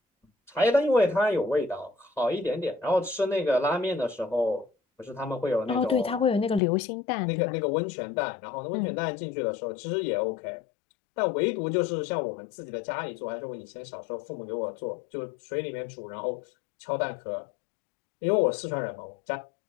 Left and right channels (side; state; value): right; drops out; at 6.6 s